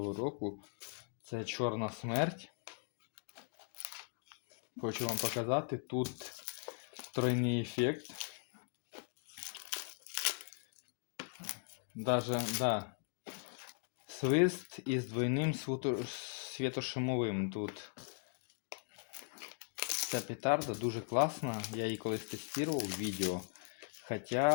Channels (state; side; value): silent; right; 52 dB below the other